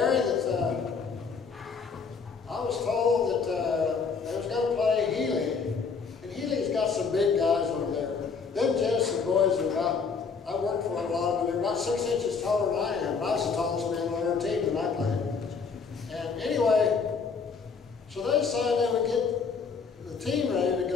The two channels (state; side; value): quieter; right; 5.4 dB